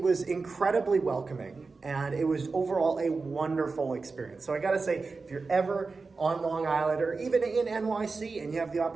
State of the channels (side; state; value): left; quieter; 4.2 dB